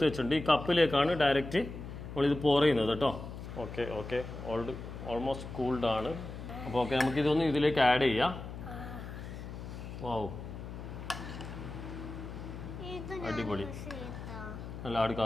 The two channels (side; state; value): left; noise; hum, 10 dB below the sound